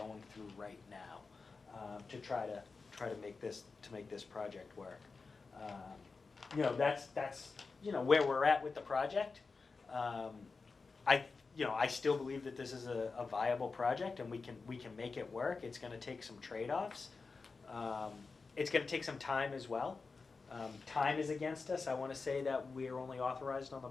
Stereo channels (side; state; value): right; quieter; 4.4 dB